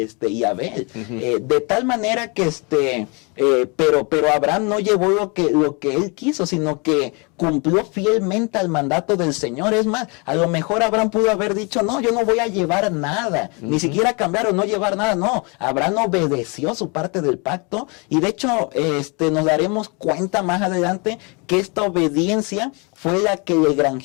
Abel. De tal manera que pero Abraham no llevó lo que él quiso, sino que cumplió fielmente al mandato del Señor. Es más, a lo mejor Abraham pudo haber dicho, no, yo no voy a llevar nada, ni siquiera cambiar o no llevar nada. No, Abraham obedeció su parte del pacto, y de hecho nos daremos cuenta más adelante que esta obediencia fue la que le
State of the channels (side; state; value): right; quieter; 31.2 dB